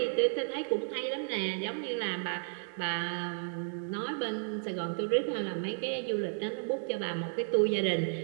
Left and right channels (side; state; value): left; silent; digital silence